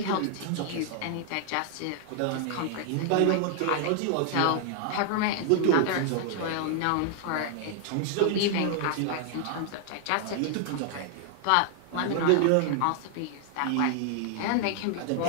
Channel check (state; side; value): different; both; correlation 0.00